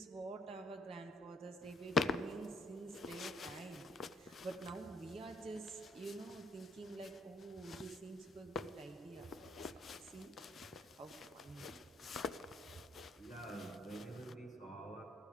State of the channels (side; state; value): both; normal; correlation 0.67